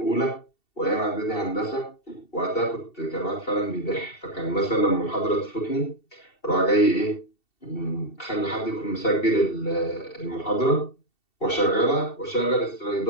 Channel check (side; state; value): right; late; 2.7 ms